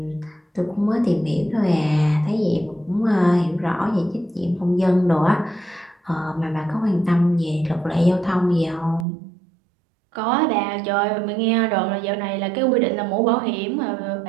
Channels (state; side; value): drops out; left; at 9.1 s